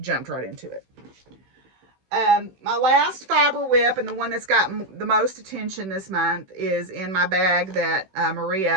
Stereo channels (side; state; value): left; late; 16 ms